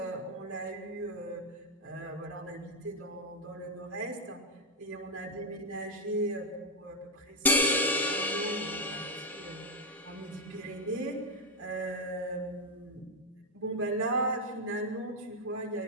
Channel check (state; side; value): normal; both; correlation 0.02